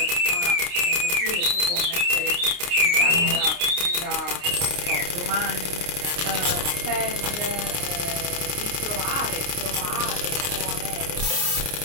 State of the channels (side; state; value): left; late; 29 ms